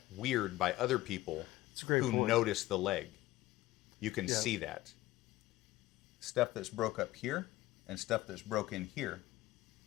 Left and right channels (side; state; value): right; quieter; 16.7 dB